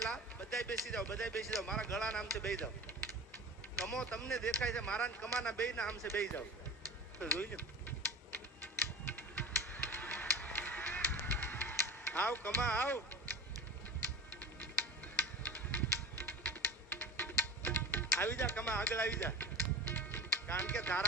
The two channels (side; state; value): both; normal; correlation 0.33